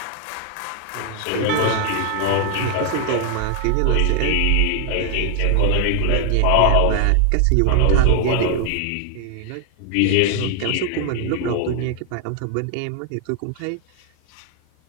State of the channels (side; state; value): both; different; correlation 0.00